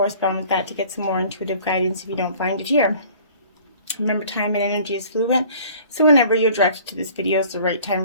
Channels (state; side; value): inverted; both; correlation -0.50